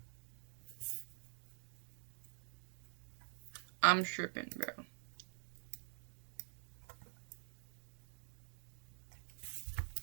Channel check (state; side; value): silent; left; digital silence